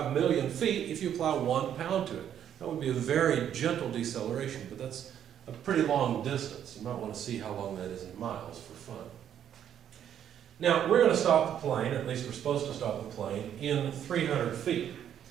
million feet if you apply 1 pound to it. That would be a very gentle deceleration, but that's a pretty long distance. You might want to see how long that is in miles for fun. Now, we're going to stop the plane, at least we're supposed to stop the plane, in 300 feet.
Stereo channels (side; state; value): left; quieter; 9.7 dB